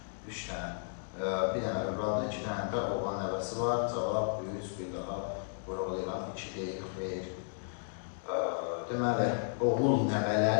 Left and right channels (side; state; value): right; silent; digital silence